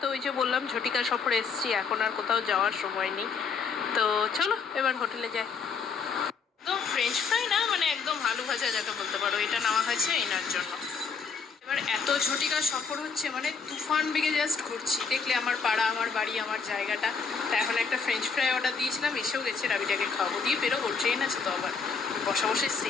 তো ওই যে বললাম ঝটিকা সফরে এসেছি, এখন আর কোথাও যাওয়ার সময় নেই। তো চলো এবার হোটেলে যাই। একদম ফ্রেঞ্চ ফ্রাই না, মানে একদম আলু ভাজা যাকে বলতে পারো, এটা নেওয়া হয়েছে এনার জন্য। এবার এত ঝটিকা সফর হচ্ছে, মানে তুফান বেগে জাস্ট ঘুরছি। দেখলে আমার পাড়া, আমার বাড়ি, আমার জায়গাটা। তা এখন একটা ফ্রেঞ্চ ফ্রাই অর্ডার দিয়েছিলাম, এসেও গেছে। রাবিটাকে খাওয়াবো, দিয়ে বেরোবো, ট্রেন আছে তো আবার। বসা বসে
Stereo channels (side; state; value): right; quieter; 5.5 dB